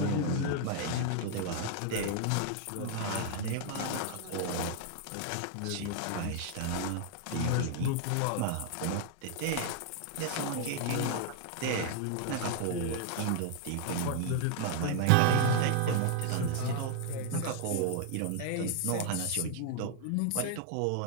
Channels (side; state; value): both; different; correlation 0.00